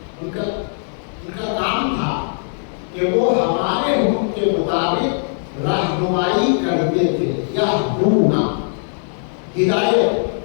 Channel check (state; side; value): silent; right; digital silence